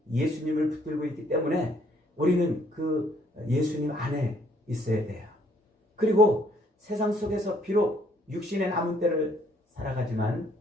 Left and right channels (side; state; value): both; normal; correlation 0.65